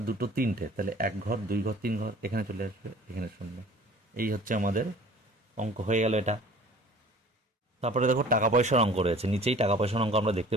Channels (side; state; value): both; normal; correlation 0.47